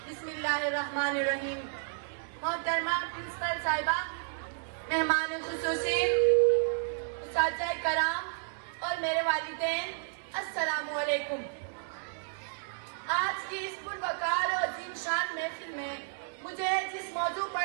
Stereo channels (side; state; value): left; silent; digital silence